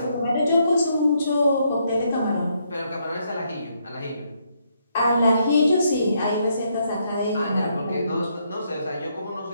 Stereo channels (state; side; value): inverted; both; correlation -0.75